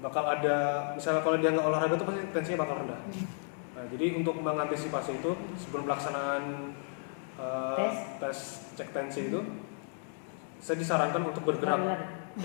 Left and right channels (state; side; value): silent; right; 56 dB below the other